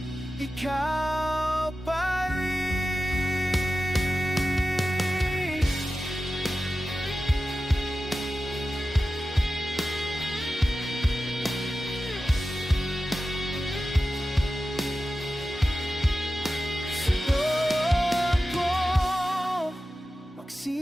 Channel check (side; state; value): both; normal; correlation 0.94